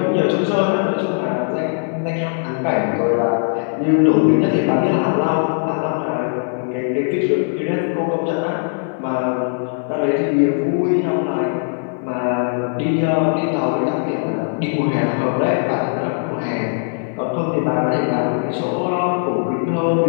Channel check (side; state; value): right; silent; 66 dB below the other